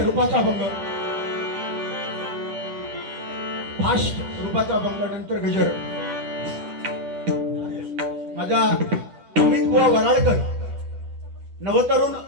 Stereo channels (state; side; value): late; left; 10 ms